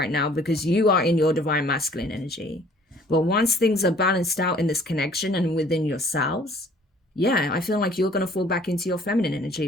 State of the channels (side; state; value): both; normal; correlation 0.56